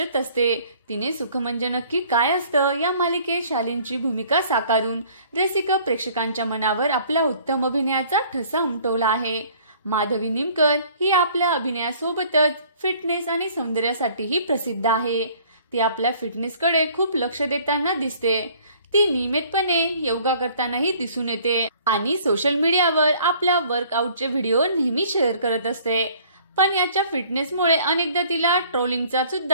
असते. तिने सुख म्हणजे नक्की काय असतं या मालिकेत शालीनची भूमिका साकारून रसिक प्रेक्षकांच्या मनावर आपल्या उत्तम अभिनयाचा ठसा उमटवला आहे. माधवी निमकर ही आपल्या अभिनयासोबतच फिटनेस आणि सौंदर्यासाठीही प्रसिद्ध आहे. ती आपल्या फिटनेसकडे खूप लक्ष देताना दिसते. ती नियमितपणे योगा करतानाही दिसून येते आणि सोशल मीडियावर आपल्या वर्कआउटचे व्हिडिओ नेहमी शेअर करत असते. पण याच्या फिटनेसमुळे अनेकदा तिला ट्रोलिंगचा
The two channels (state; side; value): inverted; both; correlation -0.55